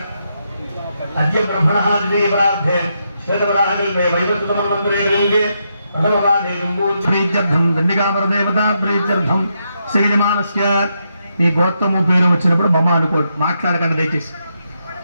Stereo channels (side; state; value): both; inverted; correlation -0.81